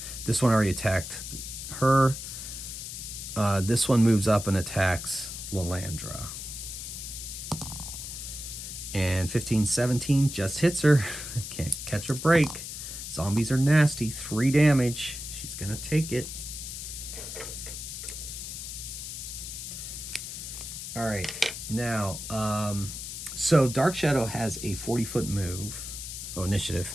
This one already attacked her. This one moves up and attacks Lalandra. And 15, 17 just hits her. Can't catch a break. Zombies are nasty. 3 damage. She's going to take it. All right. Now, so Dark Shadow has a 40-foot move. Oh, initiative.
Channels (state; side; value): noise; left; hiss, 8 dB below the sound